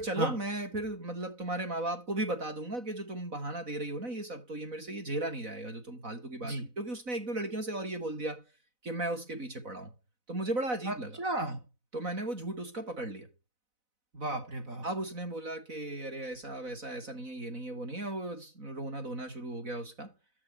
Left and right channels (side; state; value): left; late; 4.0 ms